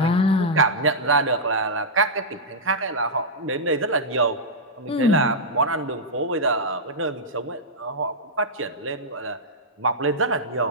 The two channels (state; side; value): normal; both; correlation -0.09